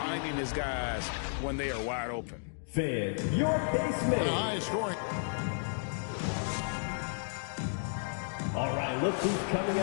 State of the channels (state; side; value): silent; right; digital silence